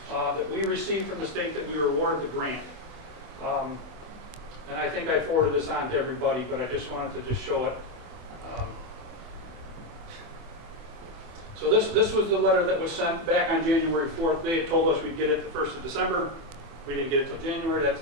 that we received from the state that we were awarded the grant. And I think I forwarded this on to everybody, but I just wanted to just show it. So this was the letter that was sent back on January 4th. They had told us we'd get it the 1st of December. We didn't get it till January. That's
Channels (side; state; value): left; late; 24 ms